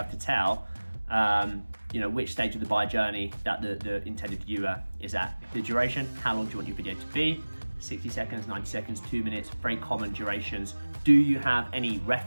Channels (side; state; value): both; inverted; correlation -1.00